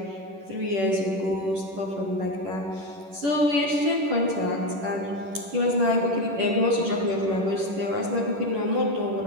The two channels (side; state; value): left; late; 10 ms